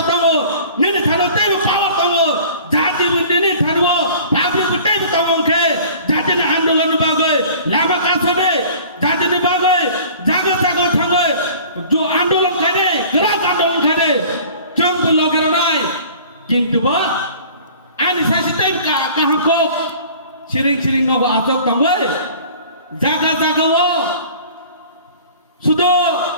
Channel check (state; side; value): inverted; both; correlation -0.46